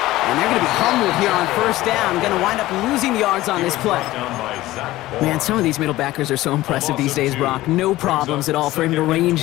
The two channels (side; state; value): right; quieter; 16.8 dB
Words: And they're going to be humbled here on 1st down. Going to wind up losing yards on this play. Man, some of these middle backers are so impressive these days, Brock. No problems at all for him to